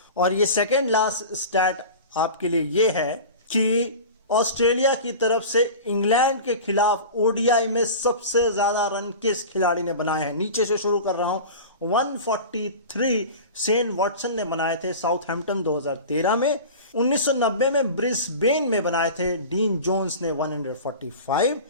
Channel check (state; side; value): inverted; both; correlation -0.34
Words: और ये सेकंड लास्ट स्टैट आपके लिए ये है कि ऑस्ट्रेलिया की तरफ से इंग्लैंड के खिलाफ ओडीआई में सबसे ज्यादा रन किस खिलाड़ी ने बनाए हैं। नीचे से शुरू कर रहा हूं। 143 शेन वॉटसन ने बनाए थे साउथहैम्पटन 2013 में। 1990 में ब्रिस्बेन में बनाए थे डीन जोन्स ने 145।